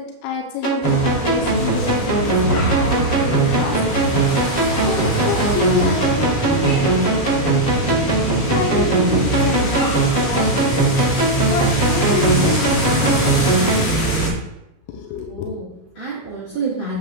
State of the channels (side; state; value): right; late; 20 ms